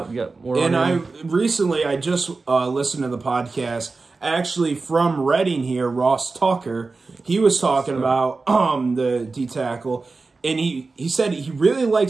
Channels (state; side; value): quieter; left; 3.9 dB